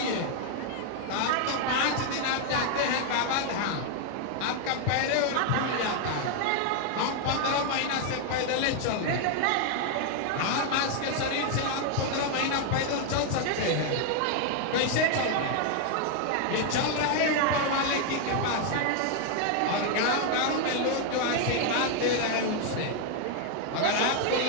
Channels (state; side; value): different; both; correlation 0.00